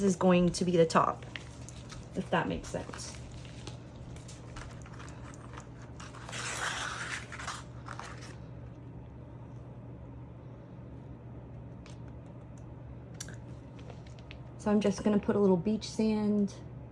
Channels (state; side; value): identical; both; correlation 1.00